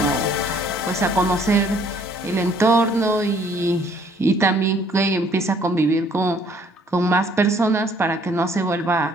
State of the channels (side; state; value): both; normal; correlation 0.61